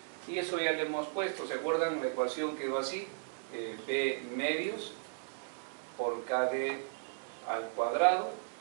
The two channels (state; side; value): silent; left; digital silence